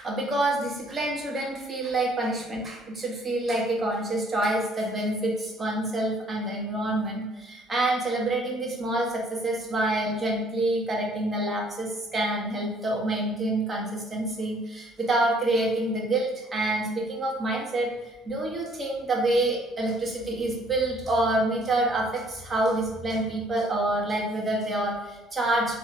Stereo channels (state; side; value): normal; both; correlation 0.61